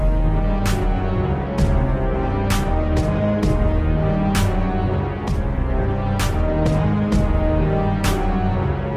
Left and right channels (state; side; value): identical; both; correlation 1.00